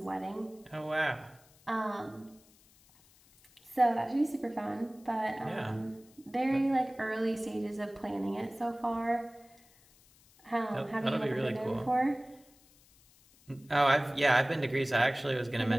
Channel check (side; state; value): left; noise; hiss, 28 dB below the sound